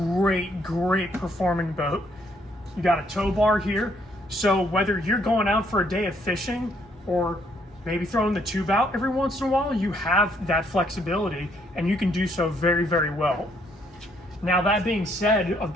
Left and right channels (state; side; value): normal; both; correlation 0.69